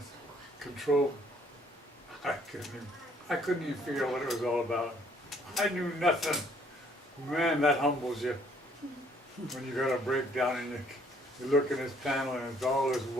control. I couldn't even figure out what it was all about. I knew nothing. Man, that humbles you. When you got a breakdown and you look in this panel and it's all this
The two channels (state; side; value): normal; both; correlation 0.63